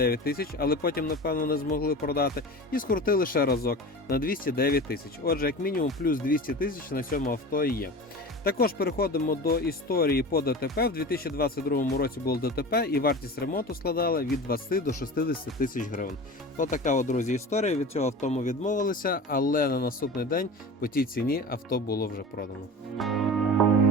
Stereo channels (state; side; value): normal; both; correlation 0.33